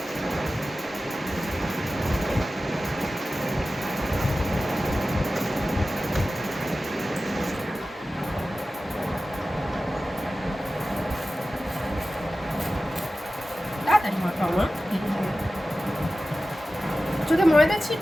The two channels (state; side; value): normal; both; correlation 0.95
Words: তাড়াতাড়ি মাখাও মা। যদি ময়দা